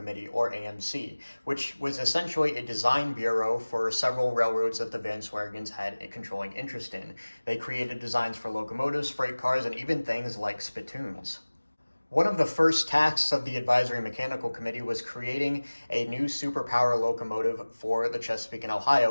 or AMC, which was essentially a design bureau for several railroads that the Van Sweringens had a controlling interest in. They created designs for locomotives, freight cars, and even things like spittoons. One of the first tasks of the Advisory Mechanical Committee was creating a new superpower locomotive for the Chesapeake and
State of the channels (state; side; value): inverted; both; correlation -1.00